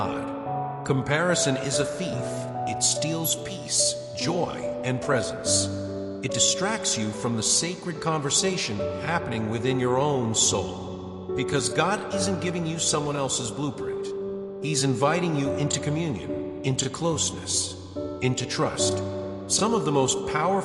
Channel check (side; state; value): both; identical; correlation 1.00